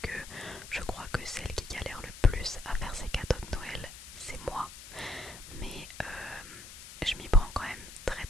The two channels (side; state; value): left; noise; hiss, 14 dB below the sound